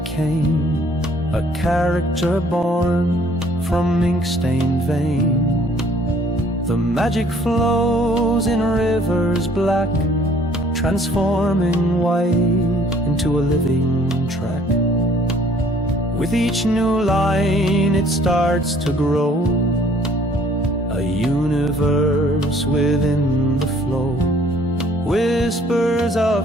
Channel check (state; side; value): normal; both; correlation 0.58